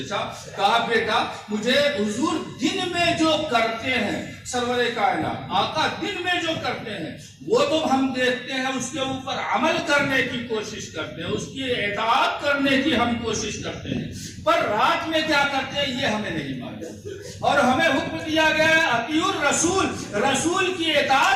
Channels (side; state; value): both; identical; correlation 1.00